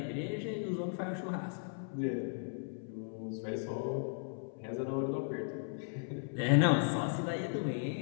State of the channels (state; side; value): silent; right; 54 dB below the other